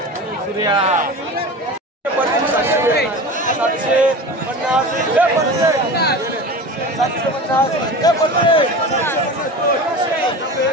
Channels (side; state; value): both; normal; correlation 0.32